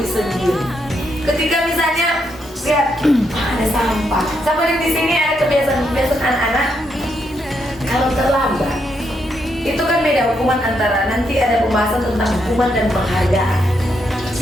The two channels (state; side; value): normal; both; correlation 0.79